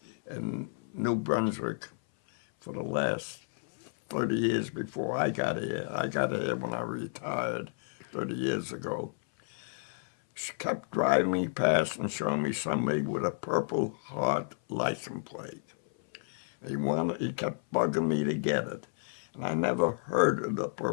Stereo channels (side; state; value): right; silent; 57 dB below the other